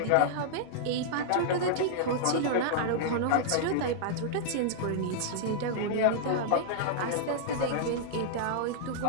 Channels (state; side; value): different; both; correlation -0.01